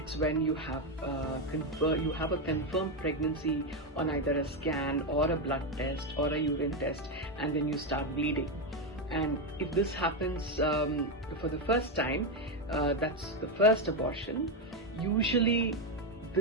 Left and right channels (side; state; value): both; normal; correlation 0.07